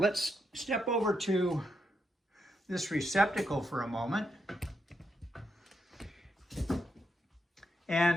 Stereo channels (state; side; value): normal; both; correlation 0.82